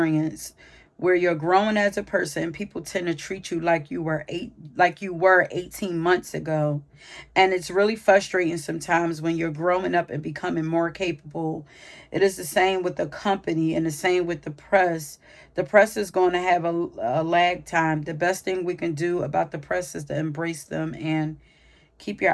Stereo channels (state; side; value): identical; both; correlation 1.00